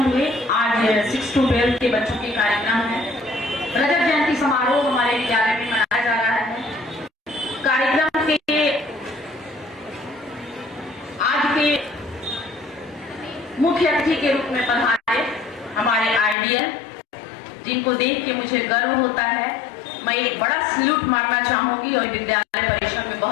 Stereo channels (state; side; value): drops out; right; at 16.4 s